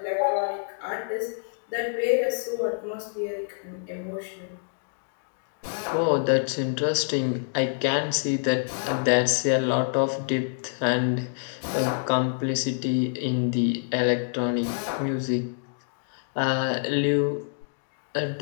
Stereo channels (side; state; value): right; silent; digital silence